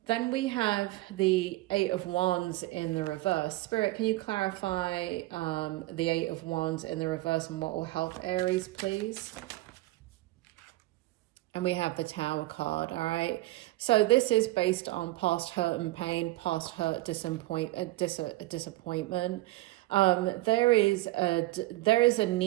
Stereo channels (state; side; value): quieter; left; 18.6 dB